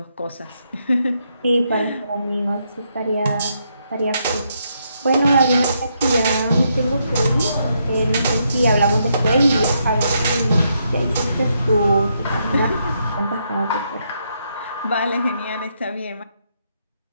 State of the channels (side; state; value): both; inverted; correlation -0.78